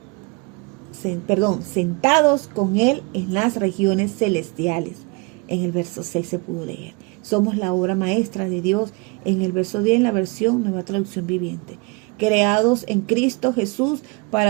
Sentados con Él en las regiones celestiales. En el verso 6 se pudo leer. Somos la obra maestra de Dios. En el verso 10 en la versión Nueva Traducción Viviente. Creados en Cristo Jesús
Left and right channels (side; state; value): left; quieter; 28.3 dB